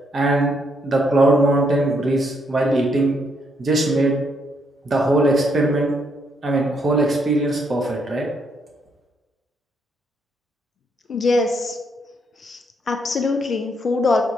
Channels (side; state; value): both; normal; correlation 0.74